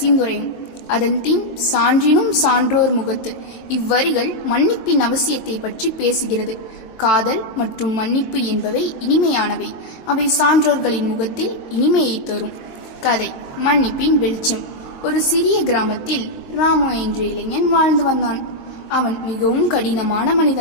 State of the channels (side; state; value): right; late; 23 ms